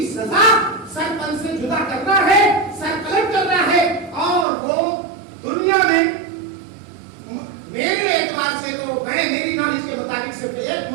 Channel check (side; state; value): left; drops out; at 4.5 s